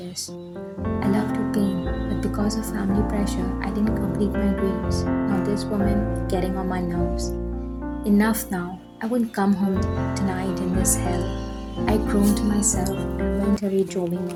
I love to paint, but because of family pressure, I didn't complete my dreams. Now this woman getting on my nerves. Enough now. I wouldn't come home tonight in this hell. I groaned to myself and mentally drove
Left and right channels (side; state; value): both; identical; correlation 1.00